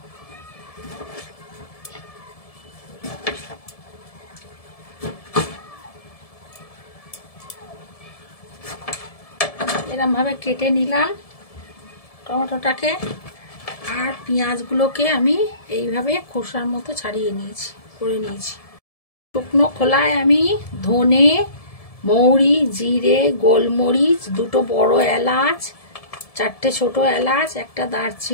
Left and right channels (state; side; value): late; right; 1.7 ms